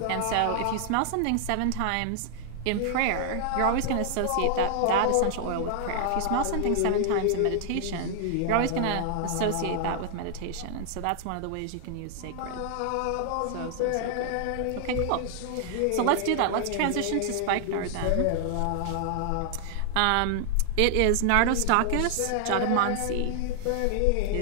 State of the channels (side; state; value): both; different; correlation 0.00